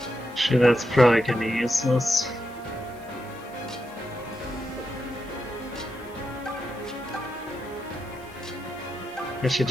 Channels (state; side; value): noise; left; hiss, 26 dB below the sound